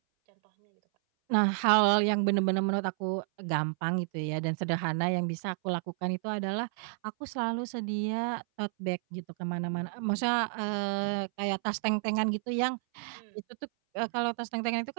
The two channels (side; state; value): left; silent; 57 dB below the other